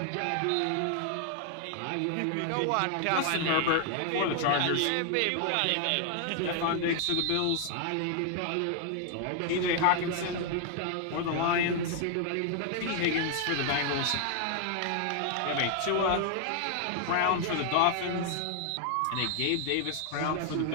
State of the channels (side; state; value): both; different; correlation 0.00